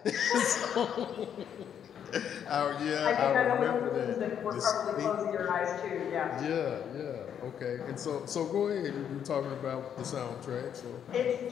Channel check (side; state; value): right; quieter; 8.8 dB